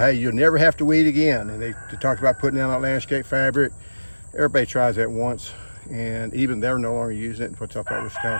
hey, you'll never have to weed again. And they talked about putting down that landscape fabric. Everybody tries that once, and even they're no longer using it, which I thought was kind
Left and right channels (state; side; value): inverted; both; correlation -1.00